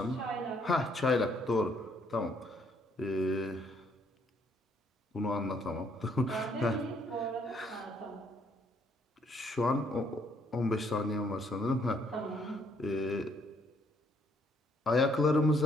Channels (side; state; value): both; normal; correlation 0.68